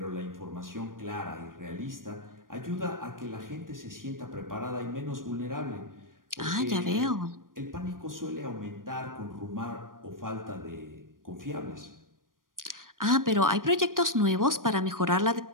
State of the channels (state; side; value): late; left; 0.90 ms